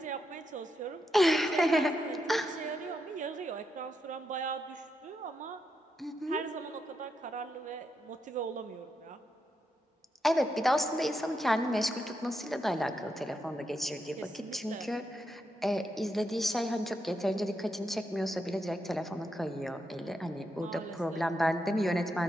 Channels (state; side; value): normal; both; correlation 0.83